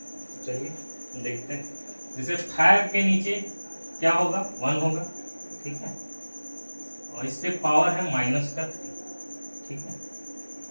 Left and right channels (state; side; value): inverted; both; correlation -1.00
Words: चलिए देखते हैं। जैसे 5 के नीचे क्या होगा, 1 होगा। ठीक है, और इस पे पावर है -3। ठीक है,